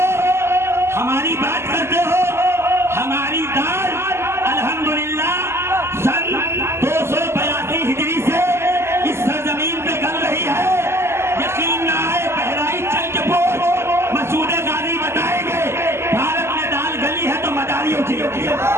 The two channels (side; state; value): left; late; 0.12 ms